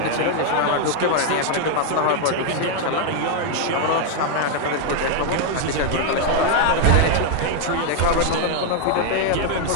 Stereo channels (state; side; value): different; both; correlation 0.00